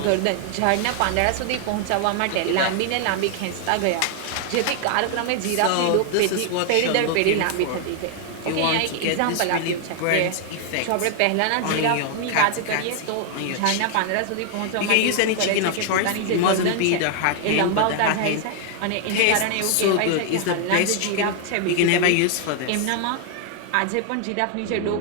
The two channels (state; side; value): different; both; correlation 0.00